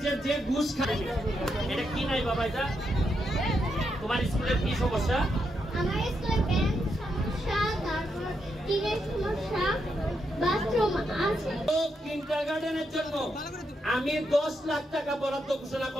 যে যে ঘুষ খায় এটা কি নাই বাবা, এটা তোমার স্কুলের কি সমস্যা? আমার স্কুলে বেঞ্চ সমস্যা, তারপর টিনের সমস্যা, বাথরুম আছে। তো কিন্ডারগার্টেনের জন্য আমি 10 লাখ টাকা বরাদ্দ ঘোষণা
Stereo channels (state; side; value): normal; both; correlation 0.82